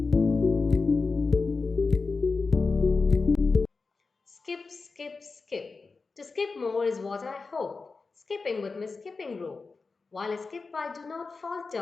Skip, skip, skip. To skip more is what I hope. Skipping with my skipping rope. While I skip, I do not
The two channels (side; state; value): right; quieter; 4.3 dB